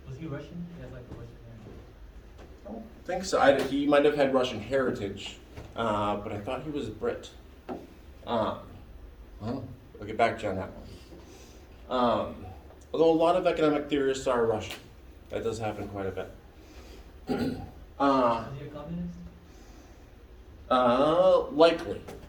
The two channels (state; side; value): identical; both; correlation 1.00